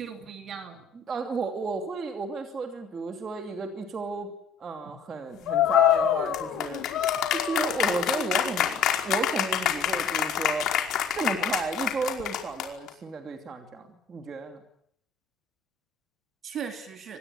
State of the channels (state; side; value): quieter; right; 4.7 dB